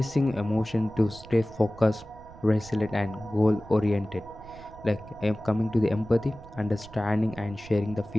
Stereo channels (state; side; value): noise; right; rumble, 18 dB below the sound